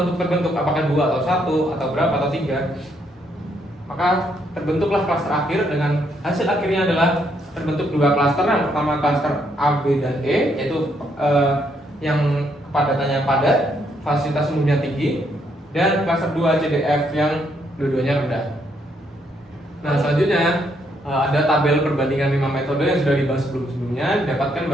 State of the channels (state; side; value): normal; both; correlation 0.73